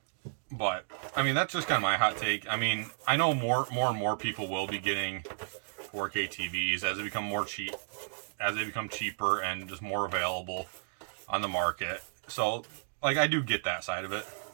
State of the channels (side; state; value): left; silent; digital silence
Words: But I mean, that's just kind of my hot take. I mean, I know more and more people will be getting 4K TVs as they become cheaper and just more available on the market. So, like, I do get that side of it.